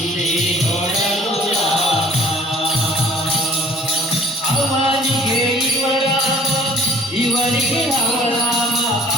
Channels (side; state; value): both; normal; correlation 0.52